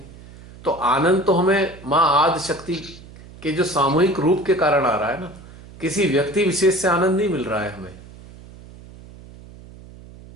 तो आनंद तो हमें माँ आदि शक्ति के जो सामूहिक रूप के कारण आ रहा है ना, किसी व्यक्ति विशेष से आनंद नहीं मिल रहा है हमें।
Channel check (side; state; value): right; noise; hum, 19 dB below the sound